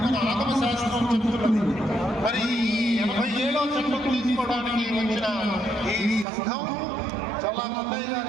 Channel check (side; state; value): left; drops out; at 6.2 s